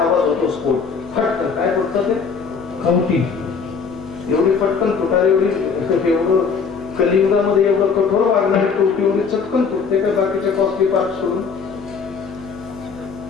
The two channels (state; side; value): quieter; right; 5.6 dB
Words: होतो स्फोट. फटकन काय फुटतं ते खवटी. एवढी पटकन फुटार एवढं कलियुगामध्ये एवढं कठोर वागणारी टोपी एवढी चटकन फुटते का बाकीचे कॉस्टली पार्ट सोडून?